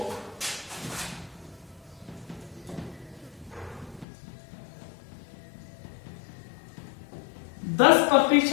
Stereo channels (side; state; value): right; drops out; at 4.0 s